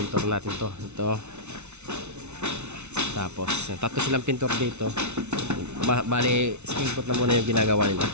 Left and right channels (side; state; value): left; late; 0.82 ms